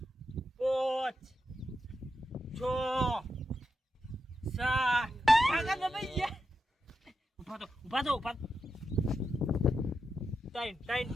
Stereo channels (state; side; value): normal; both; correlation 0.87